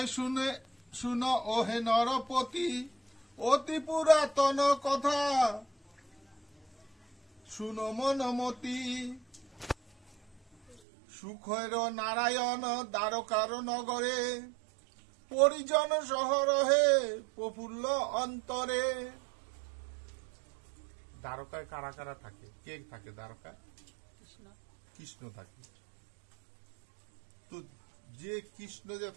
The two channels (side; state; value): left; drops out; at 10.8 s